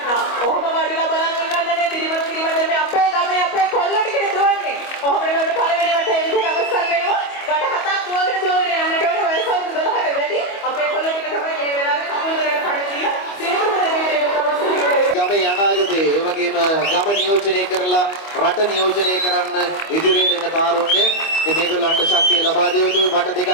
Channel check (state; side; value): late; right; 25 ms